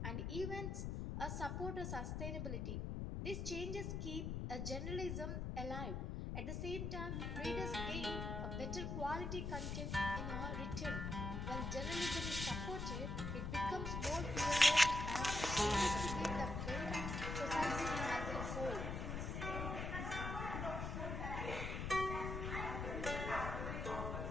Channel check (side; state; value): left; noise; rumble, 3 dB below the sound